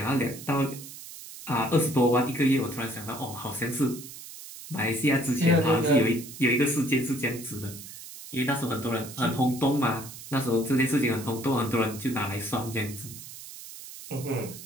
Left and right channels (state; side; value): noise; right; hiss, 14 dB below the sound